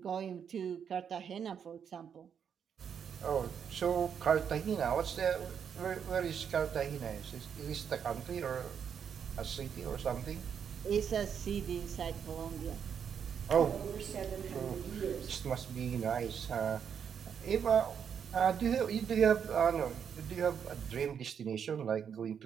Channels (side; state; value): left; quieter; 7.6 dB